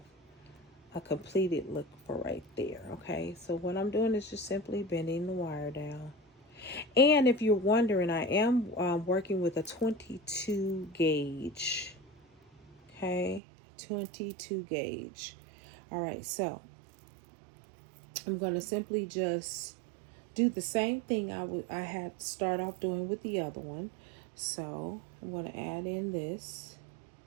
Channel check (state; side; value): drops out; left; at 13.4 s